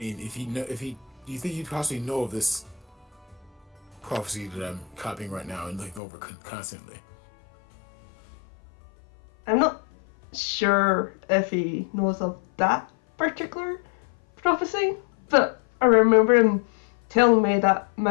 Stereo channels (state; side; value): drops out; right; at 6.0 s